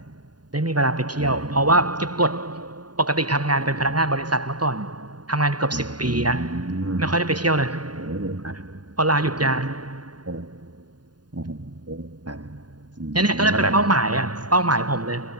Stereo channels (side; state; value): left; late; 0.70 ms